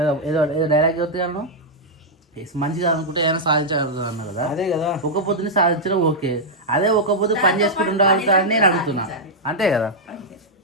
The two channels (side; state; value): both; normal; correlation -0.06